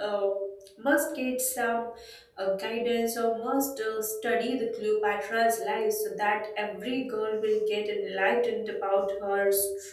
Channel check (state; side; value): identical; both; correlation 1.00